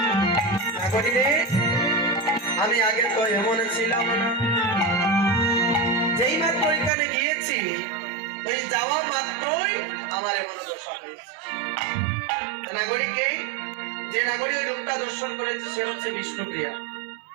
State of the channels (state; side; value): drops out; left; at 6.9 s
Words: নাগরী রে, আমি আগে তো এমন ছিলাম না। যেই মাত্র ওইখানে গিয়েছি, ওই যাওয়া মাত্রই আমার এমন দশা হয়েছে। নাগরীকে, যে নাগরী ওই রূপটা দর্শন করেছে সে হচ্ছে বিষ্ণুপ্রিয়া।